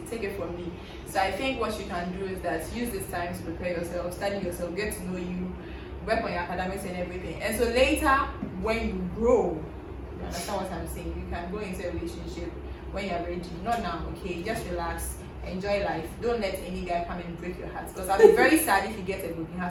take it from me. So I think what you can do is that use this time to prepare yourself, study yourself, get to know you, work on your academics and everything. And so later, when you grow, you understand what I'm saying? You can go into a relationship when you're ready. Not now, okay? Just relax, enjoy life. Don't let any guy come and break your heart. Because I'll be very sad if you get a broken heart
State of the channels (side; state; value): both; identical; correlation 1.00